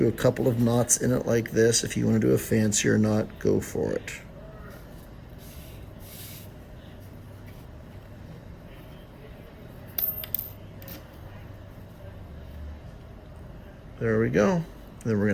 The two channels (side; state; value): both; identical; correlation 1.00